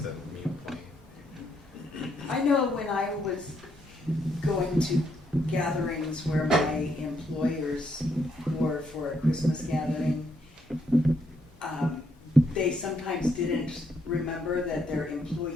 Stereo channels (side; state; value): both; normal; correlation 0.75